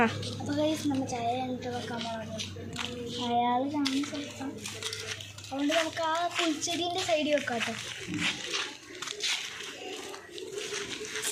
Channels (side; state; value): both; identical; correlation 1.00